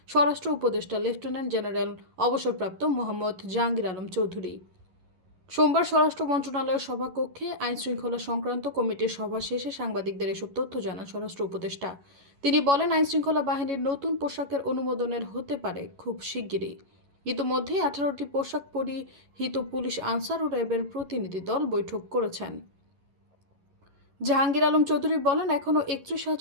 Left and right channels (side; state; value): left; late; 11 ms